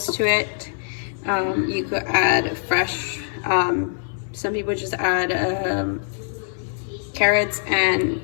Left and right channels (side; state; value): right; silent; digital silence